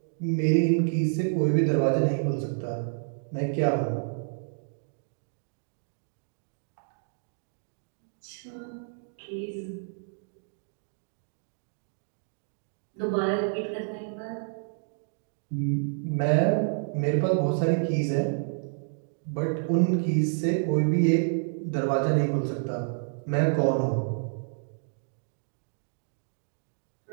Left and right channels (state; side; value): silent; left; digital silence